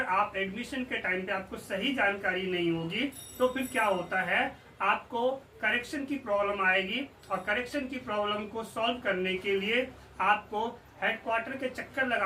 आप एडमिशन के टाइम पे आपको सही जानकारी नहीं होगी तो फिर क्या होता है, आपको करेक्शन की प्रॉब्लम आएगी और करेक्शन की प्रॉब्लम को सॉल्व करने के लिए आपको हेडक्वार्टर के चक्कर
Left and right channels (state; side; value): identical; both; correlation 1.00